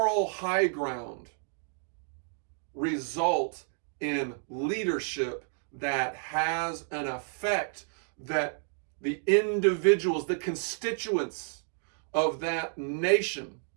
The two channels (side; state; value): left; silent; 57 dB below the other